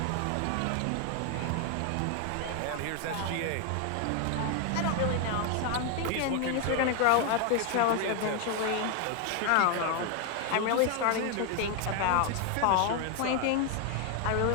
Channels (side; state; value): both; different; correlation 0.01